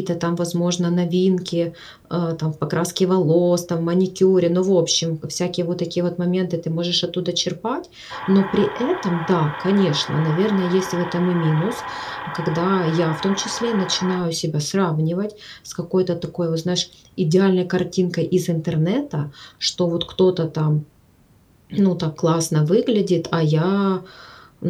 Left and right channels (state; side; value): identical; both; correlation 1.00